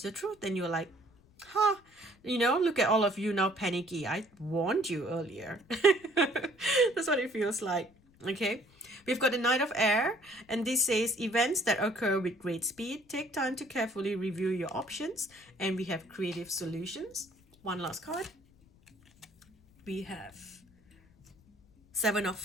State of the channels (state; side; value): noise; left; rumble, 30 dB below the sound